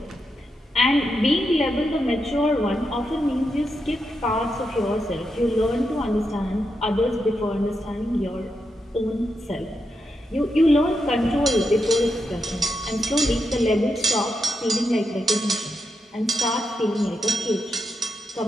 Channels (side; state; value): both; normal; correlation 0.85